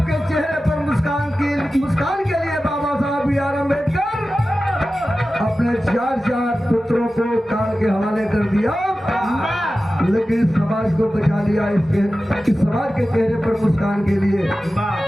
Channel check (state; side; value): normal; both; correlation 0.94